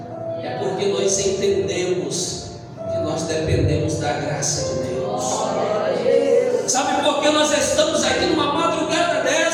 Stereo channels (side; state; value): both; identical; correlation 1.00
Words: É porque nós entendemos que nós dependemos da graça de Deus. Sabe por que nós estamos aqui numa madrugada